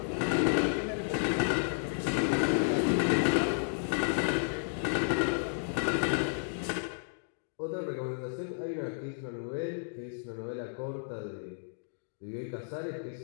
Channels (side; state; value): right; silent; digital silence